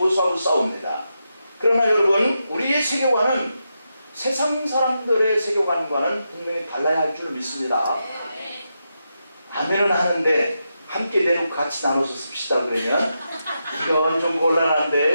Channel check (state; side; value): inverted; both; correlation -0.86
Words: 싸웁니다. 그러나 여러분, 우리의 세계관은 세상 사람들의 세계관과는 분명히 달라야 할 줄 믿습니다. 아멘은 하는데 함께 내놓고 같이 나눠서 씁시다 그러면 이건 좀